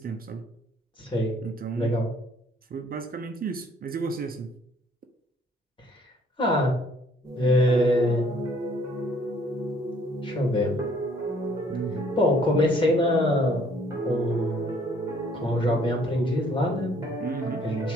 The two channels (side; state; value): both; normal; correlation 0.61